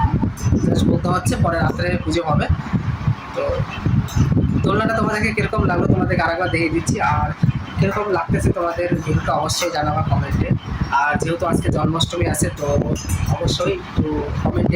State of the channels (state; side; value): identical; both; correlation 1.00